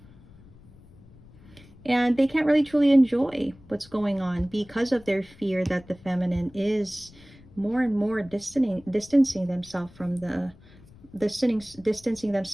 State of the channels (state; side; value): noise; left; rumble, 24 dB below the sound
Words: And they can't really truly enjoy what's going on because of their fear that the feminine is more and more distancing themselves from distancing